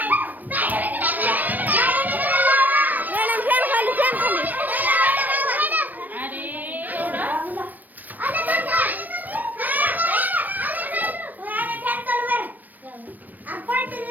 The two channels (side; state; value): left; late; 0.086 ms